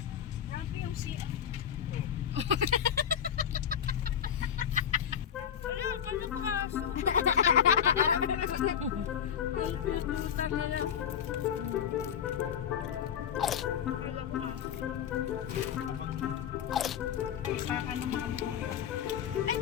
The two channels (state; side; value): quieter; right; 8.6 dB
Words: Grabe yung siya. Wala, pala ko aso. Ang puta na lang. Wala ko aso. Baka na makamuha. Ay,